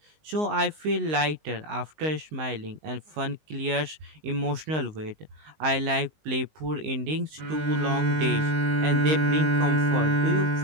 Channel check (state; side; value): late; left; 19 ms